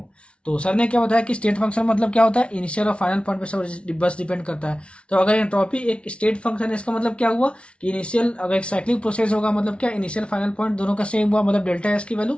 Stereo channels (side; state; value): right; late; 0.059 ms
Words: तो सर ने क्या बताया कि स्टेट फंक्शन मतलब क्या होता है, इनिशियल और फाइनल पॉइंट पे सब बस डिपेंड करता है। तो अगर एंट्रोपी एक स्टेट फंक्शन है, इसका मतलब क्या हुआ कि इनिशियल, अगर एक साइक्लिक प्रोसेस होगा मतलब क्या, इनिशियल फाइनल पॉइंट दोनों का सेम हुआ, मतलब डेल्टा एस की वैल्यू